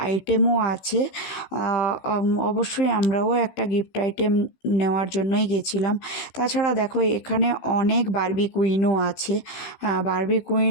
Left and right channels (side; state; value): right; late; 15 ms